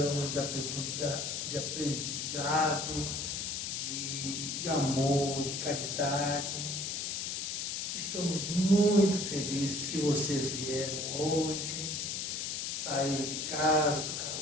de aprendizado, de amor, de caridade. Que estamos muito felizes que vocês vieram hoje, saíram de casa, do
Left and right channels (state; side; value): noise; left; hiss, 2 dB below the sound